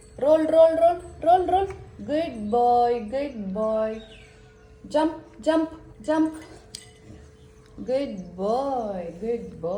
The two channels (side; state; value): both; identical; correlation 1.00